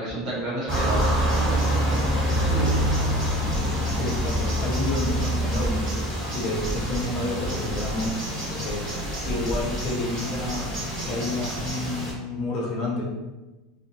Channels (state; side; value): normal; both; correlation 0.45